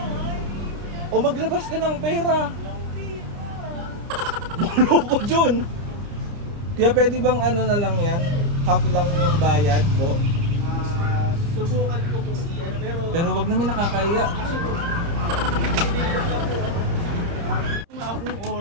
O maglabas ka ng pera. Loko dyan. Kaya pwede bang ano na lang yan? Half lang yung bayad mo. Subukan ko kung iyan. Pero wag naman nakakaya. Akong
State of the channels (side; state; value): left; late; 30 ms